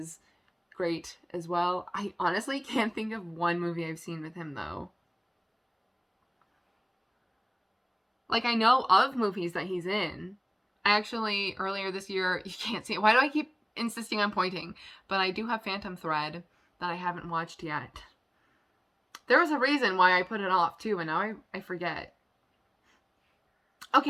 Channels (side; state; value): both; identical; correlation 1.00